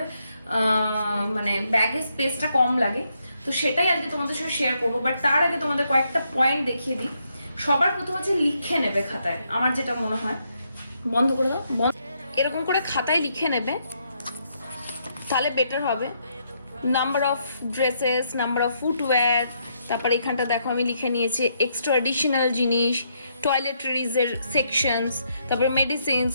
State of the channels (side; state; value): both; inverted; correlation -0.76